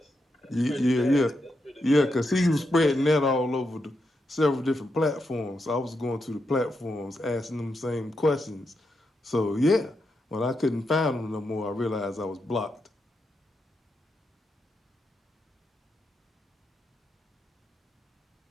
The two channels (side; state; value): both; normal; correlation 0.84